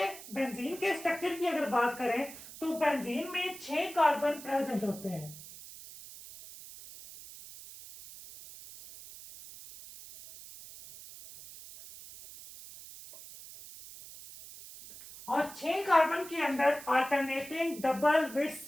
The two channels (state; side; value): noise; right; hiss, 15 dB below the sound